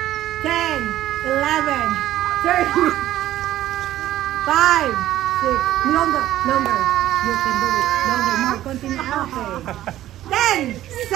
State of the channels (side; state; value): left; quieter; 13.7 dB